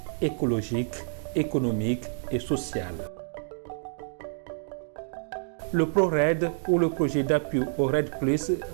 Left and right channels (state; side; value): silent; left; digital silence